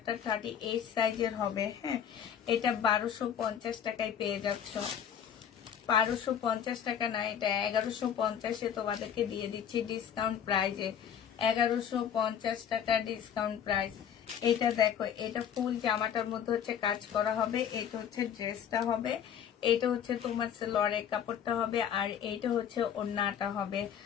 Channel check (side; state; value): right; quieter; 8.7 dB